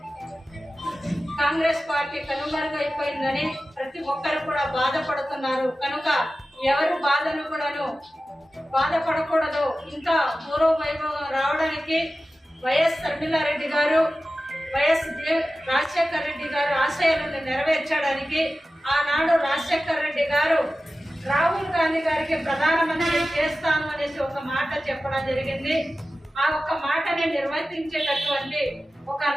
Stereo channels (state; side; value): normal; both; correlation 0.95